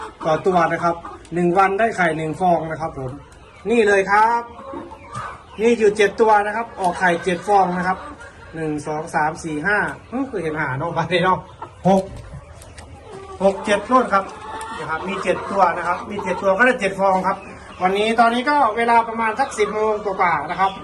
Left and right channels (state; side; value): identical; both; correlation 1.00